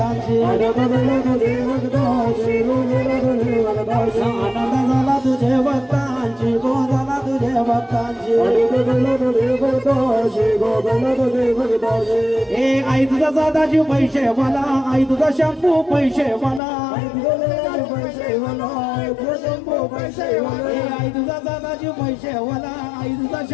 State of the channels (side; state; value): right; drops out; at 16.6 s